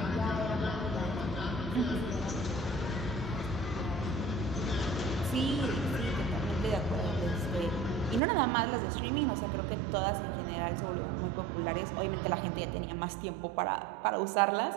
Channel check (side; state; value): left; drops out; at 8.2 s